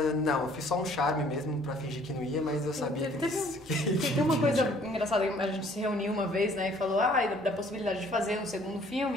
não, eu fiz só um charme mesmo pra fingir que não ia, mas eu sabia que... Tem uma coisa engraçada, a gente se reuniu uma vez, né, e falou da possibilidade de fazer um segundo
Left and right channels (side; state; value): both; normal; correlation 0.58